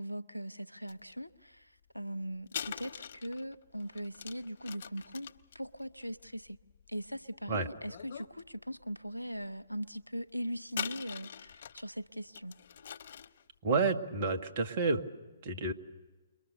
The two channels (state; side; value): inverted; both; correlation -0.65